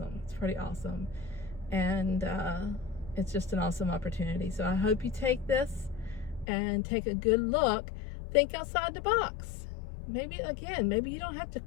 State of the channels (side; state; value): right; drops out; at 6.5 s